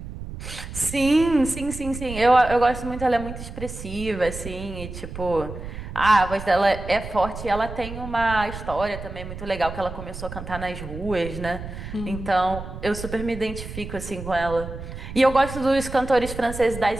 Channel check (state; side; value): noise; right; rumble, 10 dB below the sound